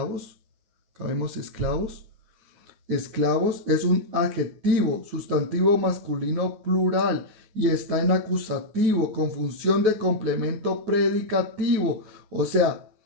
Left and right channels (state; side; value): late; left; 9.4 ms